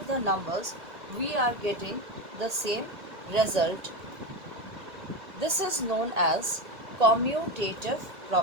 the numbers, we are getting the same result. This is known as commutative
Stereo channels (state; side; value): late; left; 1.8 ms